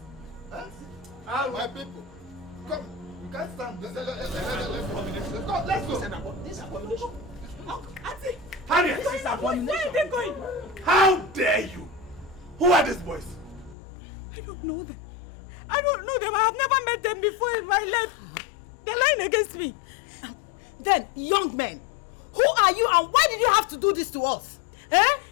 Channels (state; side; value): drops out; right; at 13.8 s